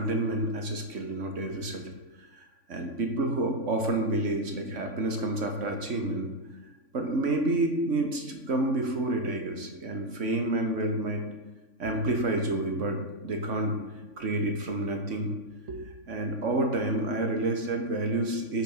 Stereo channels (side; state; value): left; late; 3.5 ms